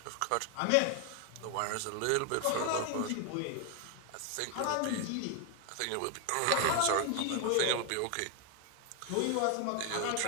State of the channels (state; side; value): different; both; correlation 0.01